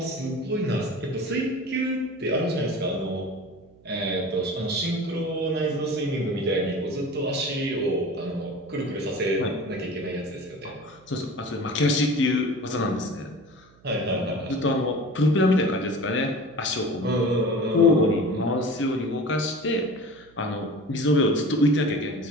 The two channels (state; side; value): noise; right; hum, 28 dB below the sound